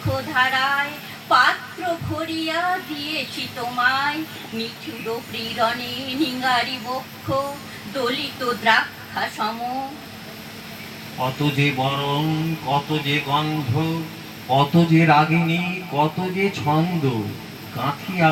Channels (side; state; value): both; identical; correlation 1.00